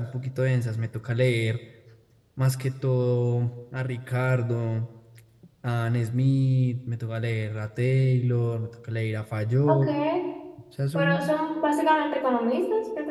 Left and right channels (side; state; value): both; identical; correlation 1.00